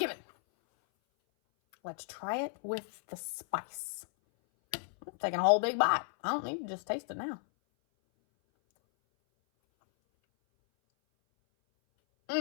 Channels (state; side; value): silent; right; 55 dB below the other